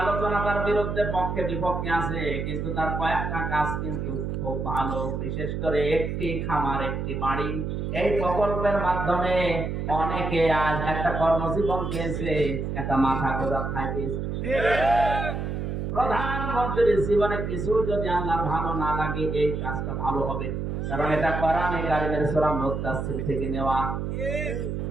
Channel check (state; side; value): noise; right; hum, 3 dB below the sound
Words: আলোচনা তার বিরুদ্ধে পক্ষে বিপক্ষে আছে, কিন্তু তার কয়েকটা কাজ কিন্তু খুব ভালো। বিশেষ করে একটি খামার একটি বাড়ি, এই প্রকল্পের মাধ্যমে অনেকে আজ একটা কর্মজীবন পেয়েছে, একটা মাথা গোঁজা ঠাঁই পেয়েছে। প্রধানমন্ত্রীর জীবনে কিছু যদি আল্লাহর ভালো না লাগে, এই কাজটা ভালো হবে, কারণ এটা কোরআনে কারিমের সূরা মুদ্দাসসির থেকে নেওয়া।